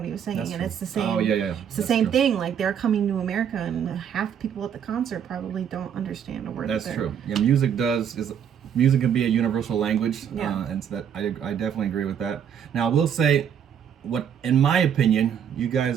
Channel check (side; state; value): left; quieter; 8.4 dB